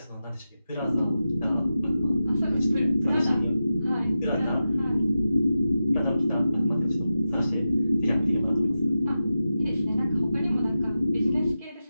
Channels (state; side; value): inverted; both; correlation -0.92